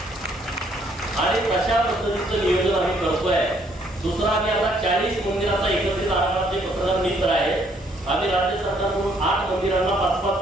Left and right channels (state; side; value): normal; both; correlation 0.67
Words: आणि तशा पद्धतीचं नियोजन आम्ही करतोय. दुसरा, आम्ही आता 40 मंदिराचा एकत्रित आराखडा पत्रकार मित्र आहे. आम्ही राज्य सरकारकडून 8 मंदिरांना 5-5